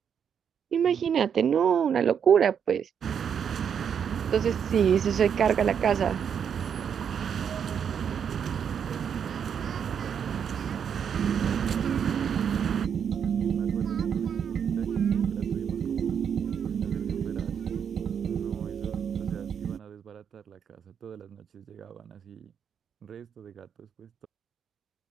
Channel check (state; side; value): quieter; left; 7.7 dB